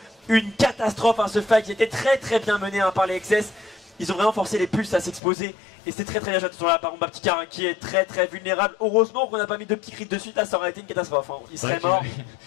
Une catastrophe ce fight qui était très bien mené par les XS. Ils ont vraiment forcé les pulses à s'exposer et c'est très bien joué sur la part de Baptista qui est très vulnérable. Heureusement qu'on n'a pas mis de petits crits de suite, là ça aurait été une catastrophe. Il serait mort.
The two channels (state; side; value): drops out; right; at 5.2 s